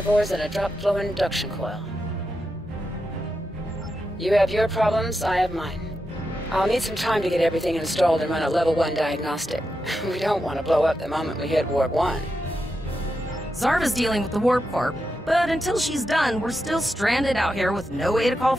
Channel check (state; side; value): normal; both; correlation 0.87